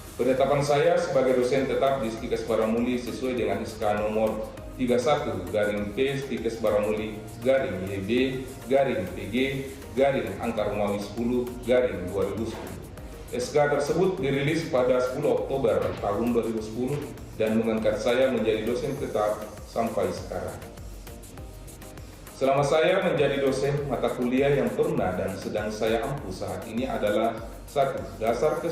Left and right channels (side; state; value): both; identical; correlation 1.00